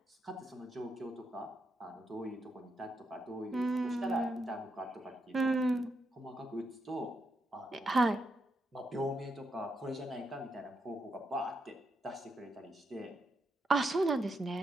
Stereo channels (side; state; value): both; normal; correlation 0.82